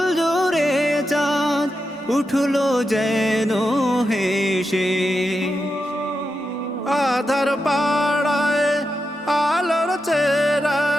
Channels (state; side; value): normal; both; correlation 0.88